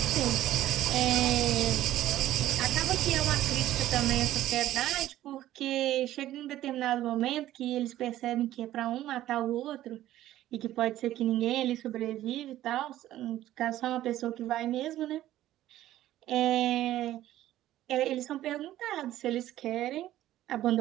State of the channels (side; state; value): left; quieter; 13.8 dB